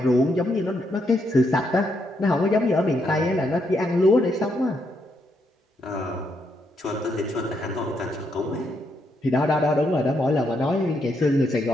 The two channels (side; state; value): both; normal; correlation 0.78